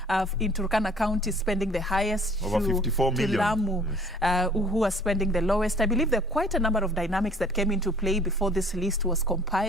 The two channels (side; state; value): both; normal; correlation 0.53